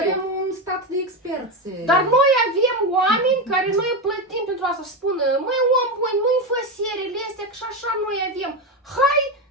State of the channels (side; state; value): both; normal; correlation 0.14